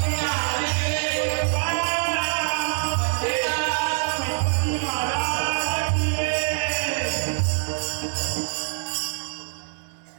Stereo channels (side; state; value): left; silent; digital silence